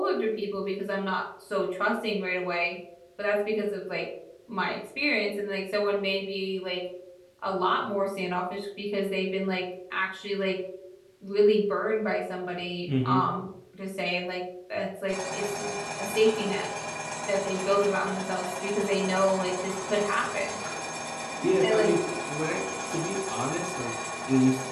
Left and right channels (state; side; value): identical; both; correlation 1.00